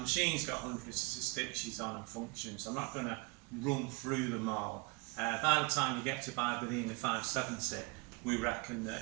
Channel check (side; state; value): left; quieter; 28.0 dB